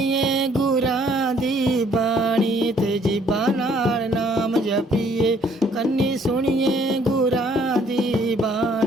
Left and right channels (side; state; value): both; normal; correlation 0.62